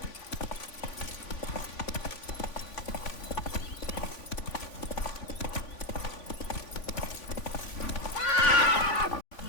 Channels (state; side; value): late; right; 3.5 ms